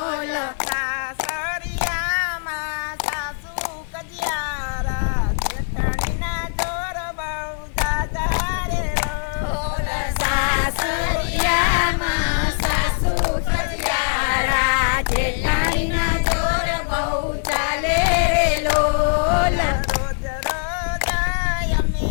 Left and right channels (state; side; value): silent; right; 64 dB below the other